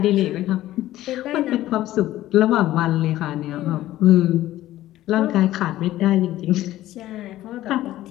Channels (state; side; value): quieter; right; 14.7 dB